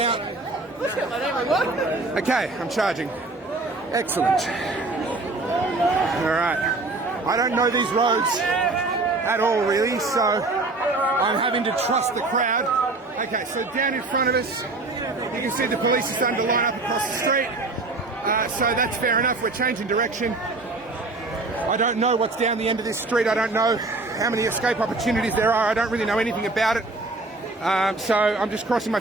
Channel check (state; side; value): quieter; left; 3.2 dB